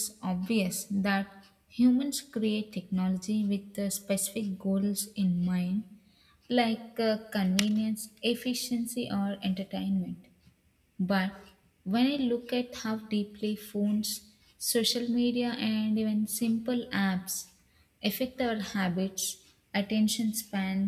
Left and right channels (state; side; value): identical; both; correlation 1.00